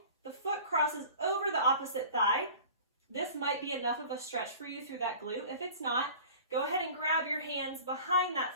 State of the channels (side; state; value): both; inverted; correlation -0.41